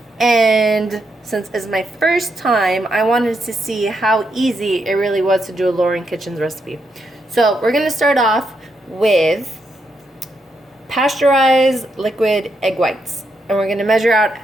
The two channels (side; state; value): both; normal; correlation 0.80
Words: And since it's my first time, I wanted to see how easy it really was to do a Lauren Kitchen's recipe. So we're going to start off with pasteurized liquid egg whites. And we're going to measure out